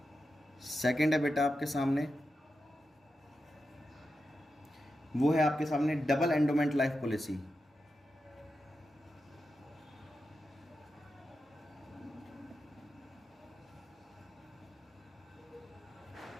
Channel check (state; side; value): normal; both; correlation 0.89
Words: Second है बेटा आपके सामने, वो है आपके सामने double endowment life policy.